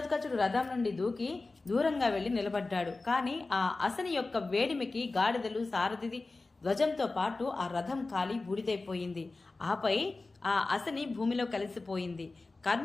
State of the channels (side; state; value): right; quieter; 3.4 dB